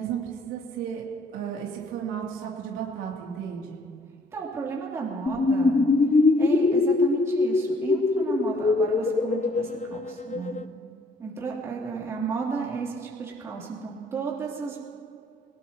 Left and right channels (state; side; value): normal; both; correlation 0.61